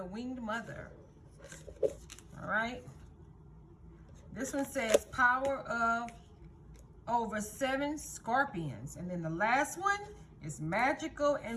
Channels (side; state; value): both; identical; correlation 1.00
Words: winged mother. All right? This one says power of over 7 scorpions. And then the last one is magical